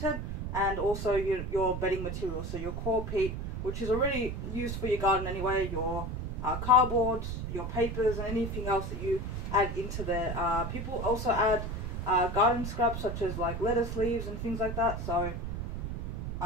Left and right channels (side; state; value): right; noise; rumble, 5 dB below the sound